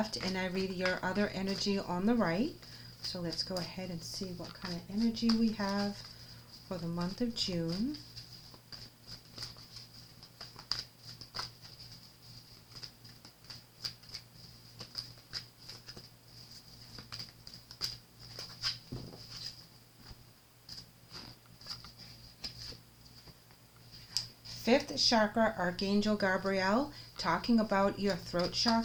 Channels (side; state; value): both; identical; correlation 1.00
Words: and I read your other energy on the right. So let's go ahead and see what kind of energy we have for the month of June. Fifth chakra, Archangel Gabrielle, talking about your throat